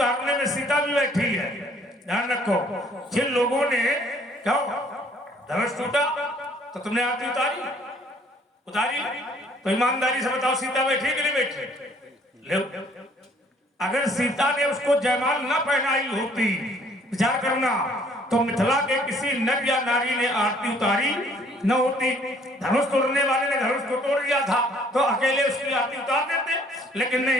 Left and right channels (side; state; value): both; normal; correlation 0.60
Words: में सीता भी बैठी है। ध्यान रखो, जिन लोगों ने क्या धनुष टूटा तो तुमने आरती उतारी तो ईमानदारी से बताओ सीता बैठी कि नहीं बैठी? ले, अगर सीता ने उसको जयमाल न पहनाई होती, विचार करना, तो मिथिला के किसी नर या नारी ने आरती उतारी न होती। धनुष तोड़ने वाले ने धनुष को तोड़ दिया था तो अकेले उसकी आरती उतार देते, लेकिन